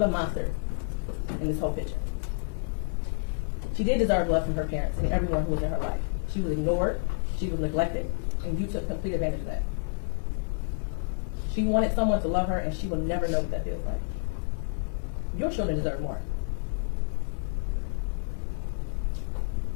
monster in this whole picture. She did deserve love from her parents and everyone who was in her life. She was ignored, she was neglected, and you took complete advantage of that. She wanted someone to love her, and she will never know what that feels like. Your children deserve more.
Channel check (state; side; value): silent; right; 58 dB below the other